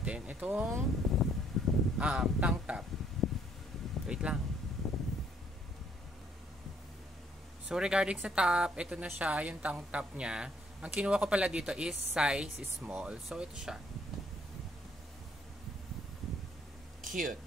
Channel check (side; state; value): both; normal; correlation 0.66